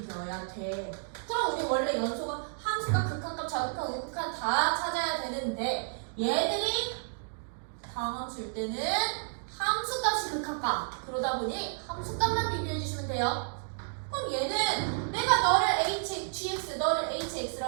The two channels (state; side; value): silent; left; digital silence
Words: 되어야 돼. 그럼 우리 원래 연속은 함수가 극한값, 좌극한, 우극한 다 찾아야 되는데 얘들이 다함수일 때는 함수값이 극한값. 그러다 보니 함수값만 비교해 주시면 돼요. 그럼 얘는 내가 너를 gx, 너를